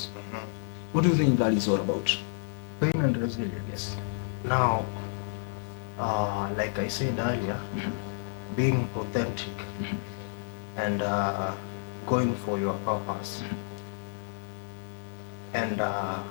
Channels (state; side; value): silent; right; digital silence